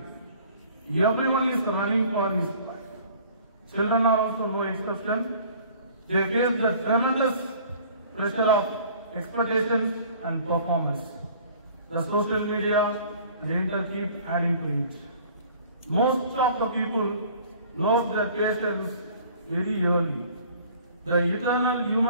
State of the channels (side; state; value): both; inverted; correlation -0.51